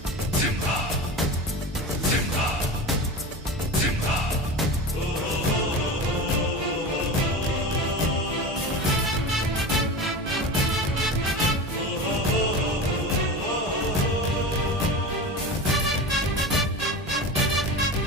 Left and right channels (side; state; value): both; normal; correlation 0.28